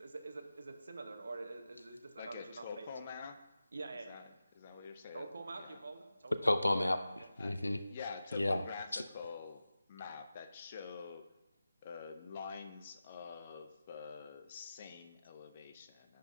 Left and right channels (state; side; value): inverted; both; correlation -0.93